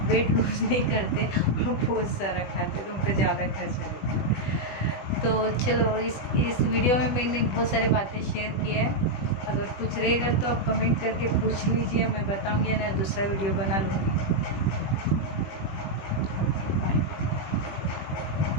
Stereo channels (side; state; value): right; late; 20 ms